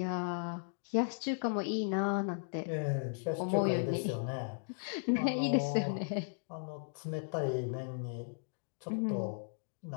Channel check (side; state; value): right; silent; digital silence